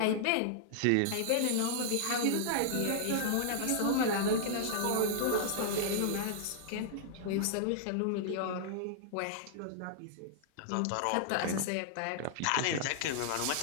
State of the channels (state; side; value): different; both; correlation -0.01